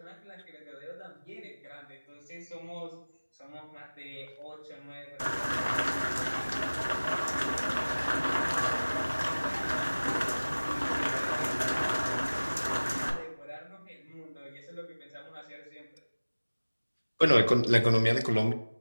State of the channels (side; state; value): both; inverted; correlation -1.00